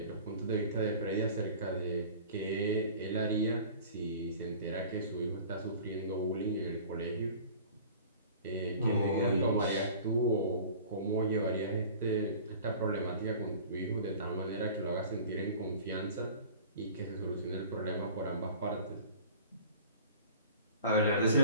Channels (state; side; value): inverted; both; correlation -0.43